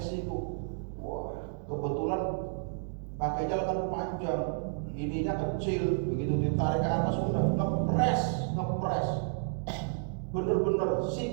wah kebetulan pakainya lengan panjang, ininya kecil, begitu ditarik ke atas udah ngepres, bener-bener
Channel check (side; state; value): left; silent; digital silence